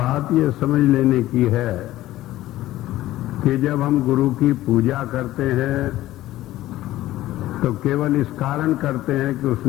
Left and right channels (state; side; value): quieter; right; 15.3 dB